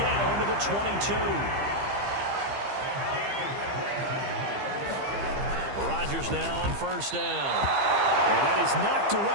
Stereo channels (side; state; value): left; late; 15 ms